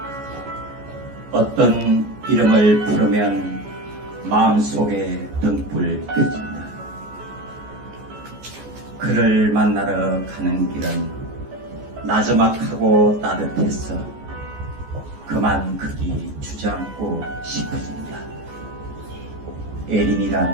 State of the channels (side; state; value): left; late; 14 ms